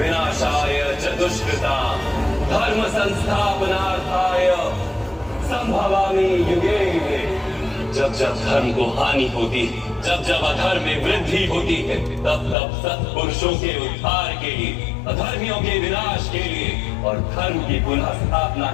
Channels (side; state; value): right; drops out; at 12.6 s